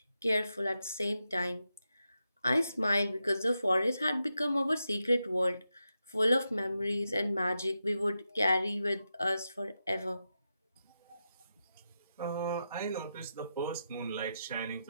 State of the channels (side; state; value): both; inverted; correlation -0.88